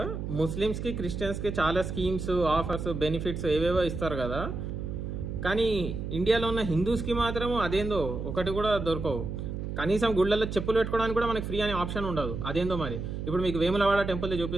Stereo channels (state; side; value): noise; right; hum, 5 dB below the sound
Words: ముస్లిమ్స్ కి క్రిస్టియన్స్ కి చాలా స్కీమ్స్ ఆఫర్స్ బెనిఫిట్స్ ఏవేవో ఇస్తారు కదా. కానీ ఇండియాలో ఉన్న హిందూస్ కి మాత్రం అదేందో ఒకటి కూడా దొరకవు. కనీసం గుళ్ళల్లో చెప్పులు పెట్టుకోవడానికి కూడా మనకి ఫ్రీ అనే ఆప్షన్ ఉండదు. అదేందో మరి. ఇప్పుడు మీకు వేములవాడ టెంపుల్